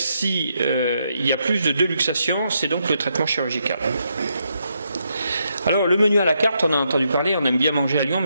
il y a plus de 2 luxations, c'est donc le traitement chirurgical. Alors le menu à la carte, on a entendu parler, on aime bien manger à Lyon,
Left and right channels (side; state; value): both; inverted; correlation -0.79